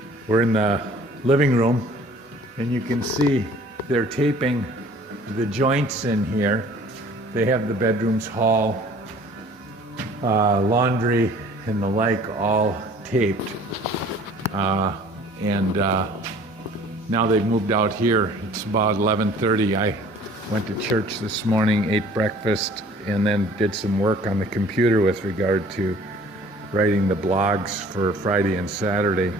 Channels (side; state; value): both; normal; correlation 0.51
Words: We're in the living room and you can see they're taping the joints in here. They have the bedrooms, hall, laundry and the like all taped. Now they've moved out here. It's about 11:30. I went to church this morning, ate breakfast, and then did some work on the computer with regard to writing the blogs for Friday and Saturday.